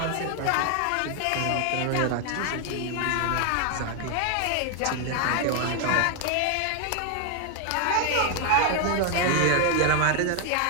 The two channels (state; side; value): different; both; correlation 0.01